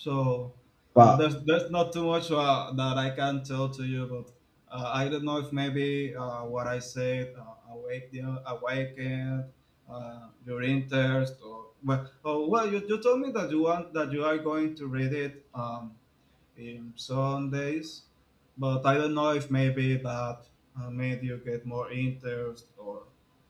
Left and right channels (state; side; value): identical; both; correlation 1.00